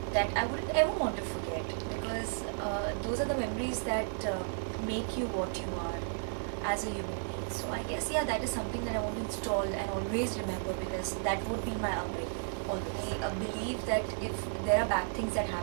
that I wouldn't ever want to forget because those are the memories that make you what you are as a human being. So I guess that is something that I want to install and always remember because that would be my upbringing. Always. I believe that if there are bad things that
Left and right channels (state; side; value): silent; left; digital silence